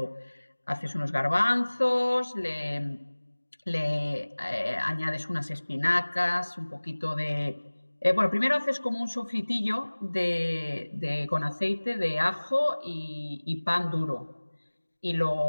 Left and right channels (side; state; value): both; inverted; correlation -1.00